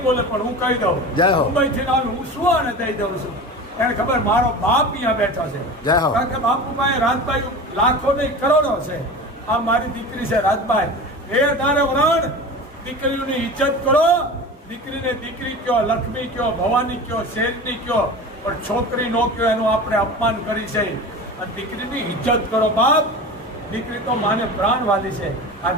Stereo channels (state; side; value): normal; both; correlation 0.32